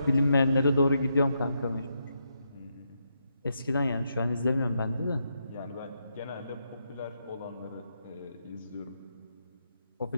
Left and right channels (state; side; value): inverted; both; correlation -0.81